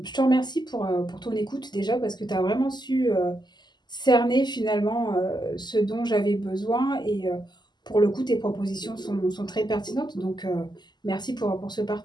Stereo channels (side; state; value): right; late; 0.21 ms